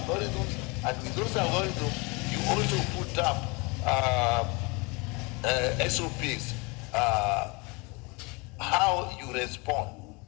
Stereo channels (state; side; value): quieter; right; 28.1 dB